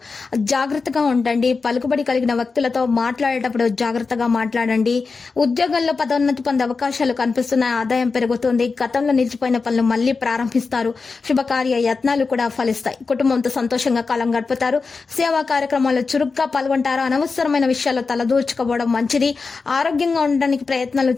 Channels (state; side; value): quieter; right; 4.5 dB